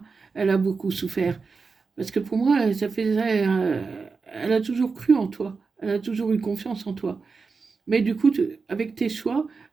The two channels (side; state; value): left; quieter; 4.7 dB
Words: Elle a beaucoup souffert. Parce que pour moi, ça faisait, elle a toujours cru en toi. Elle a toujours eu confiance en toi. Mais du coup, avec tes choix,